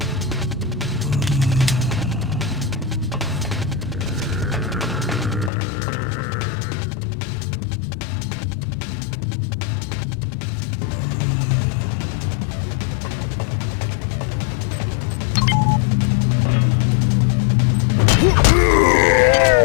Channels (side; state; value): right; drops out; at 5.5 s